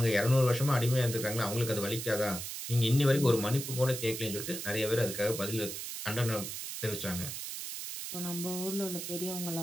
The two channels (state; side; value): noise; right; hiss, 6 dB below the sound